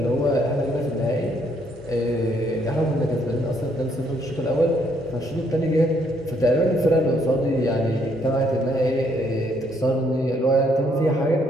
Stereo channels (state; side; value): normal; both; correlation 0.70